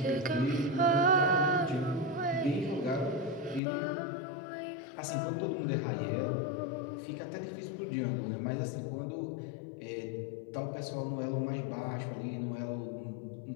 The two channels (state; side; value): drops out; right; at 3.6 s